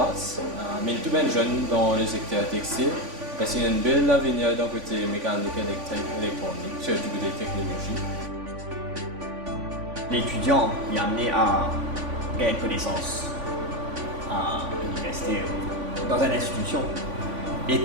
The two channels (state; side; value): late; left; 3.5 ms